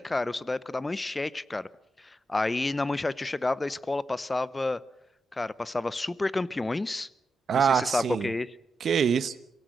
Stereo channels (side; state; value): both; normal; correlation 0.86